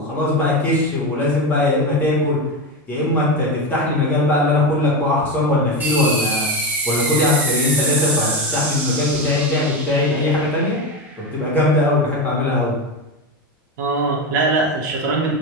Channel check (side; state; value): both; normal; correlation 0.16